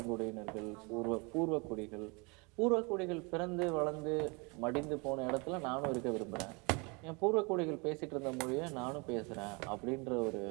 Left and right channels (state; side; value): quieter; left; 30.0 dB